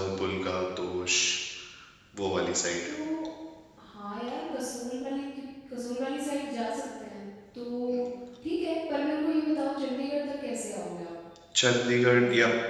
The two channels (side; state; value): both; identical; correlation 1.00